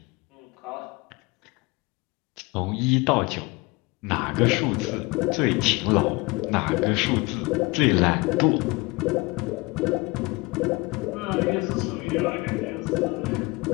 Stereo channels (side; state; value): right; quieter; 24.6 dB